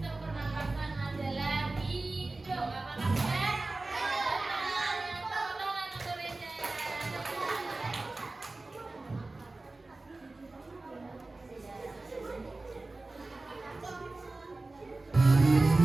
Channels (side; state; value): left; quieter; 3.2 dB